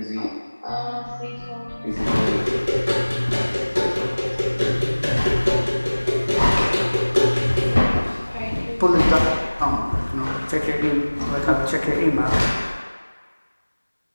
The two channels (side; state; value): both; inverted; correlation -1.00